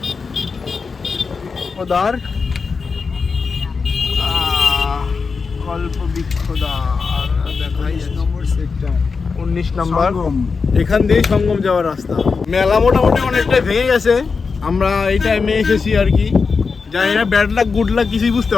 কল্পবৃক্ষদ্বার দেখাই নম্বর সেক্টর 19 নাম্বার। এখান দিয়ে সঙ্গম যাওয়ার রাস্তা। মেলা মোটামুটি অনেকটাই ভেঙে গেছে, আমরা এই টাইমে এসেছি আর কি। জানি না ব্যাড লাক গুড লাক কিছুই বুঝতে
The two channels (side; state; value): right; quieter; 4.9 dB